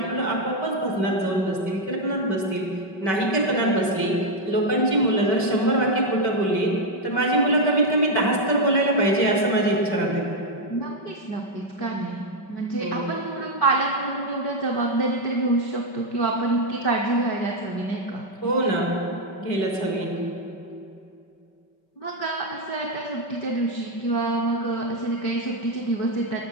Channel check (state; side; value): late; right; 5.2 ms